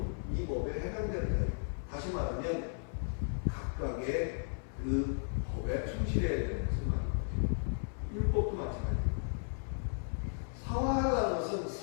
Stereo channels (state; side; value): silent; right; 54 dB below the other